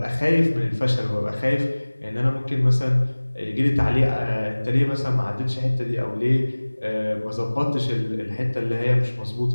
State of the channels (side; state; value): both; inverted; correlation -1.00